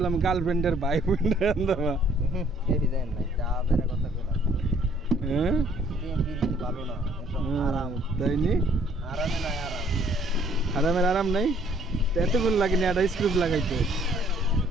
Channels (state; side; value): normal; both; correlation 0.62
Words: গার্লফ্রেন্ডের ভাই বোনের হান দাবা। এই ডিজাইন নাই যা বেরা কথা কইলা হ্যাঁ তিন পিরিতি ভালো না এসব আরাম তাই নি? আরামে নাই আরাম আরামের আরাম নাই তো এতক্ষণ লাগেনি একটা স্ক্রু লাগাইতে।